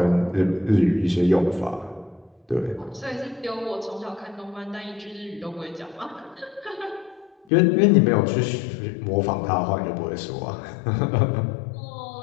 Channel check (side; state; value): right; drops out; at 7.3 s